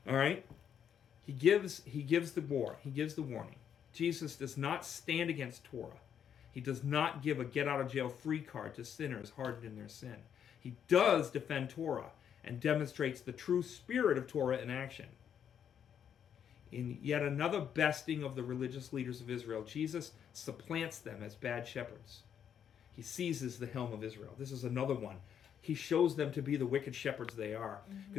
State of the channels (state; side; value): quieter; right; 8.6 dB